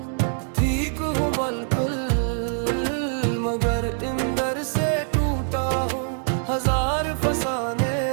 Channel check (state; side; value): silent; left; digital silence